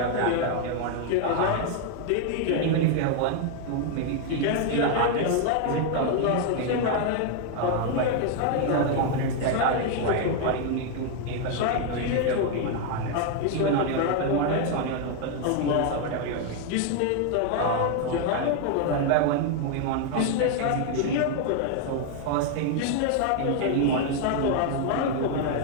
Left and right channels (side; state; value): both; different; correlation 0.00